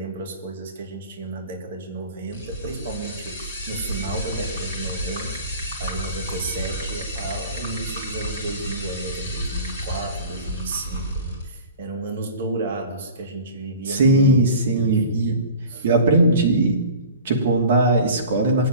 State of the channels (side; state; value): both; inverted; correlation -0.41